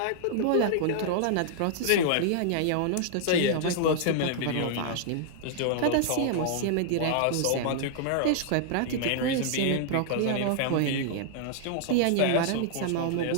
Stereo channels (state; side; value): different; both; correlation -0.01